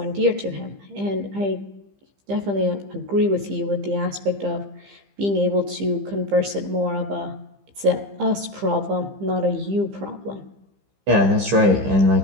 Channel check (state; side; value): late; left; 15 ms